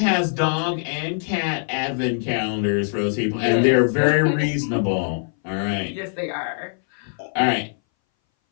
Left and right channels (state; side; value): silent; right; 61 dB below the other